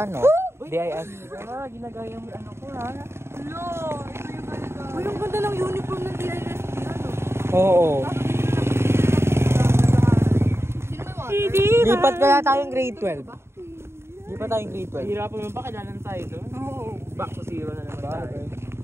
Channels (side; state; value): left; late; 0.12 ms